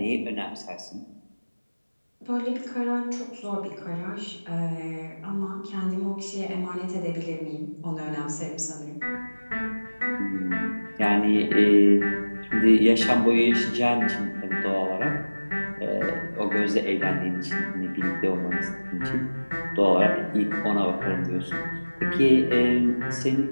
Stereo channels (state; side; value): inverted; both; correlation -1.00